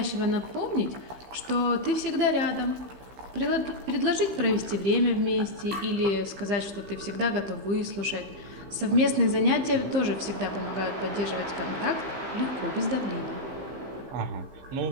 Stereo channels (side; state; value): left; late; 15 ms